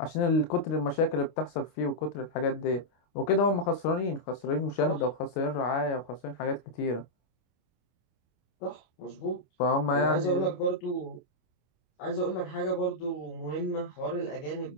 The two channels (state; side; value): late; right; 25 ms